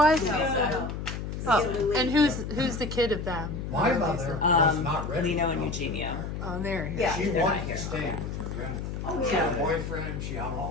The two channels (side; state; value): left; noise; hum, 5 dB below the sound